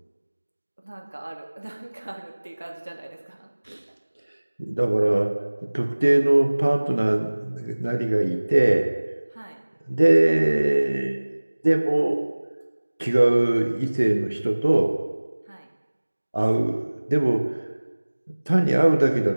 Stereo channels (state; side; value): inverted; both; correlation -1.00